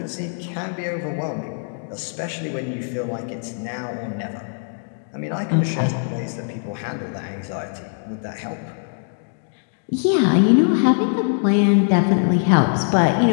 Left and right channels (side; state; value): right; silent; digital silence